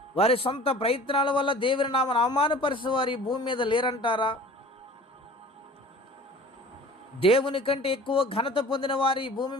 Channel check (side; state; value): both; normal; correlation 0.44